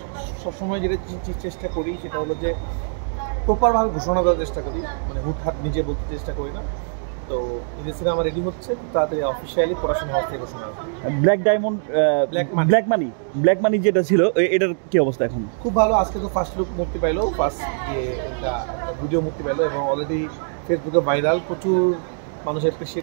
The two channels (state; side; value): silent; left; digital silence